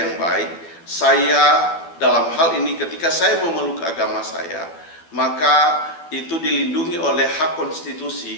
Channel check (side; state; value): right; late; 12 ms